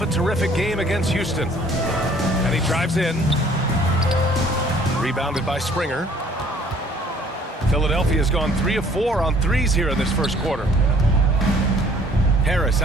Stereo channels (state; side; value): normal; both; correlation 0.57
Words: a terrific game against Houston. And he drives in. Rebounded by Springer. Philadelphia's gone 3 of 4 on threes here in this first quarter. Harris